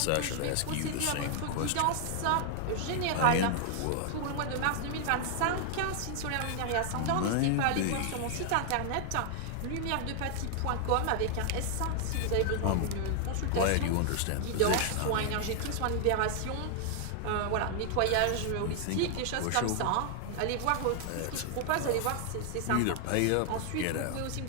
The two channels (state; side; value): different; both; correlation 0.00